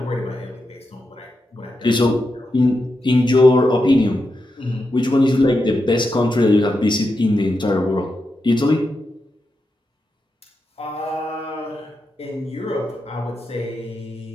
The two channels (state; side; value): normal; both; correlation 0.87